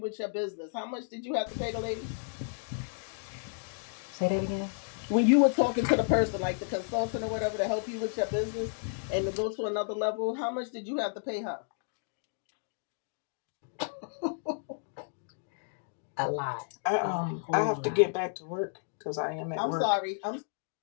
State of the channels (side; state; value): right; silent; digital silence